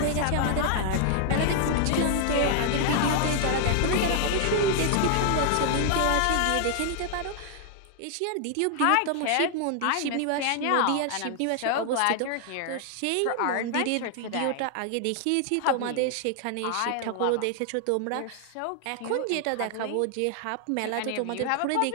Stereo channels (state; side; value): different; both; correlation 0.00